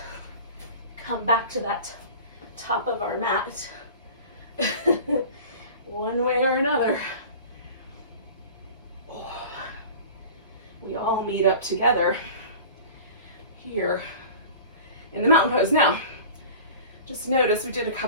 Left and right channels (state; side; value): inverted; both; correlation -0.39